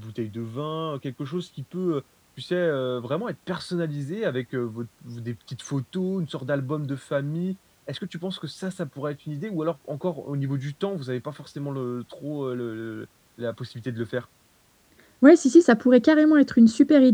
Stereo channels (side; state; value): both; identical; correlation 1.00